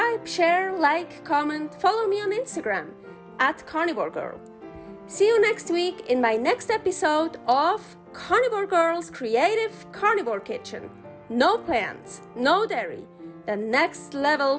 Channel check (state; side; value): identical; both; correlation 1.00